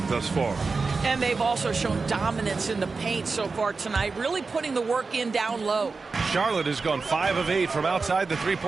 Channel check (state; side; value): quieter; left; 4.3 dB